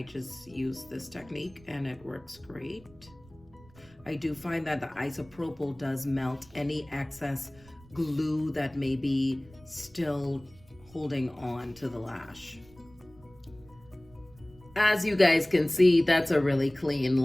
just use this technique and it works great. I do find that the isopropyl does melt any excess glue that may be still holding on to the lash. As you guys can see, that's a really clean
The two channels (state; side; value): noise; right; rumble, 25 dB below the sound